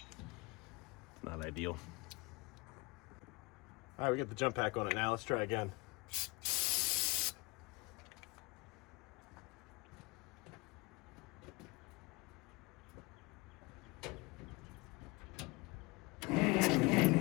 Not ideal. All right, we got the jump pack on it now. Let's try again.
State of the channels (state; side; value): quieter; right; 25.0 dB